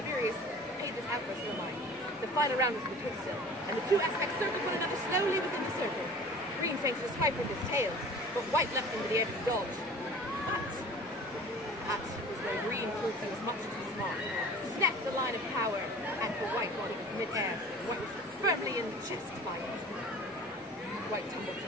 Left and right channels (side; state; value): both; normal; correlation 0.43